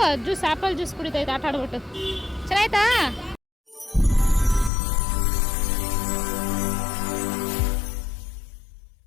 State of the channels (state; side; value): drops out; right; at 4.7 s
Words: ಜ್ಯೂಸ್ ಆಪಲ್ ಜ್ಯೂಸ್ ಕುಡಿತೈತೆ ಆಟ ಆಡ್ಬಿಟ್ಟು ಚೆನ್ನಾಯ್ತಾ